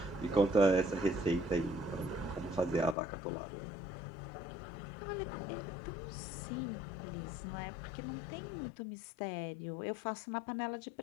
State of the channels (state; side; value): drops out; right; at 3.0 s